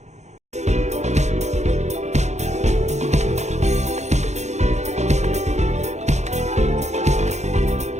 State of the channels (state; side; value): late; left; 0.33 ms